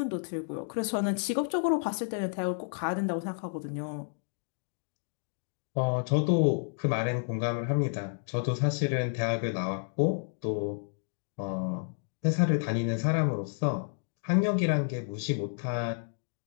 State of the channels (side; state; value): right; silent; digital silence